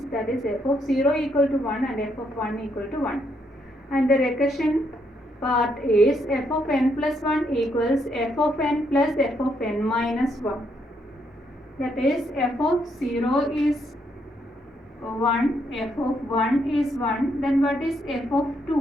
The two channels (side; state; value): both; normal; correlation 0.75